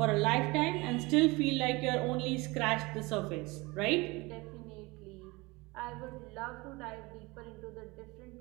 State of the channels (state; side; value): quieter; left; 23.7 dB